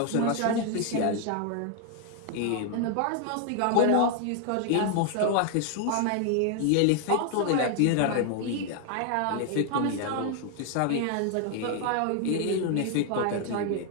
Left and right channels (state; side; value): different; both; correlation 0.00